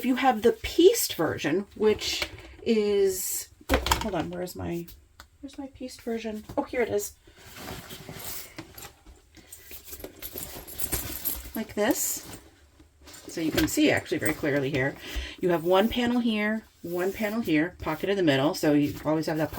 you have the pieced version, which is, hold on, where's my pieced version? Oh, here it is. Like this. So you can see actually very clearly here. You have one panel here, pocket in the middle, so you always have that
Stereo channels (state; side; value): identical; both; correlation 1.00